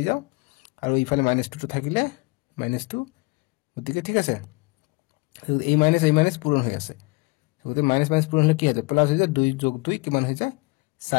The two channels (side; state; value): right; quieter; 26.1 dB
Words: যাও আৰু ইফালে -2 টো থাকিলে -2 গতিকে ঠিক আছে এই মাইনাস পূৰণ হৈ আছে গতিকে মাইনাস পূৰণ হলে কি হয় প্লাস হৈ যায় 2 যোগ 2 কিমান হৈ যায়